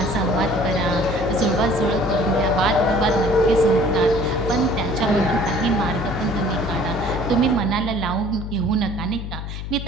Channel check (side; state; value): left; noise; hum, 7 dB below the sound